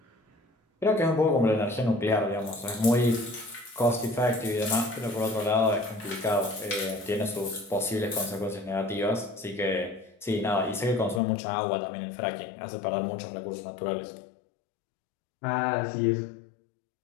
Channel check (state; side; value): drops out; right; at 11.2 s